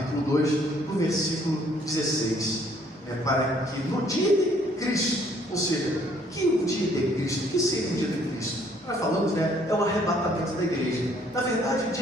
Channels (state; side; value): normal; both; correlation 0.63